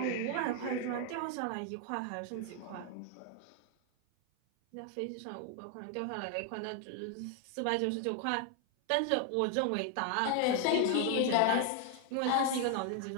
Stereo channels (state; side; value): different; both; correlation 0.00